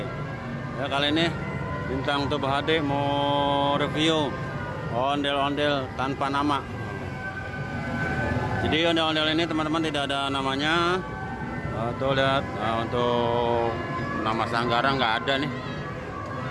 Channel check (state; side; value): identical; both; correlation 1.00